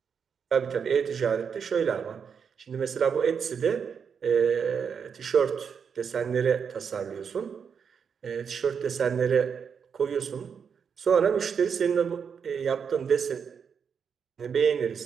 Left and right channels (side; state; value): left; quieter; 6.7 dB